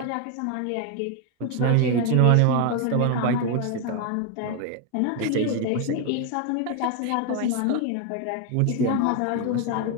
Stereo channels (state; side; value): different; both; correlation 0.01